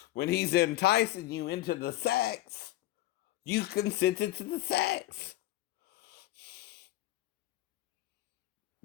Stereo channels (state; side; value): quieter; right; 16.1 dB